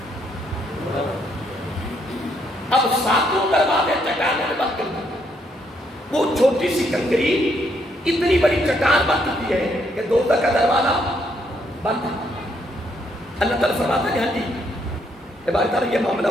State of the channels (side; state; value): both; normal; correlation 0.73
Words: اب 7 دروازے چٹانوں نے بند کر دی. وہ چھوٹی سی کنکری اتنی بڑی چٹان بن چکی ہے کہ دوزخ کا دروازہ بند ہے. اللہ تعالیٰ فرماتا ہے ہاں جی عبارت تعالیٰ یہ معاملہ